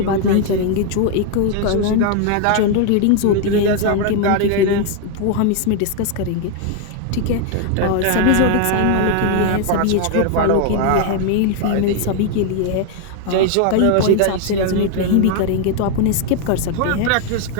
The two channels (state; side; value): different; both; correlation 0.00